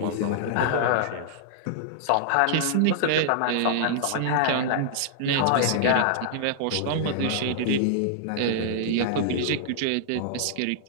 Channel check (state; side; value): different; both; correlation -0.01